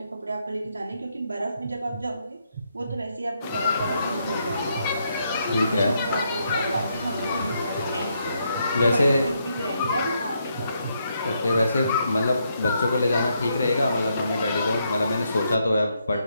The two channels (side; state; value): both; inverted; correlation -0.78